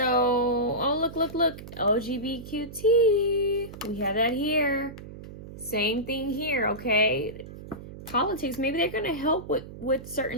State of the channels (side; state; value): right; noise; hum, 14 dB below the sound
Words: oh, look. LGBTQT. We have that here. Same thing here, okay? Politics. Maybe they're going to help with